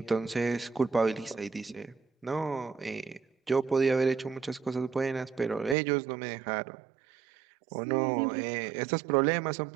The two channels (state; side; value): drops out; left; at 5.8 s